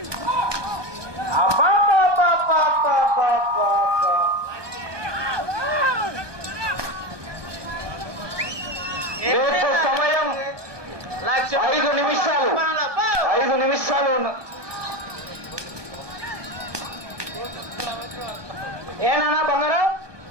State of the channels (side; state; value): left; late; 1.2 ms